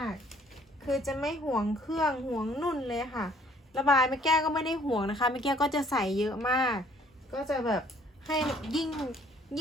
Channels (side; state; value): both; normal; correlation 0.60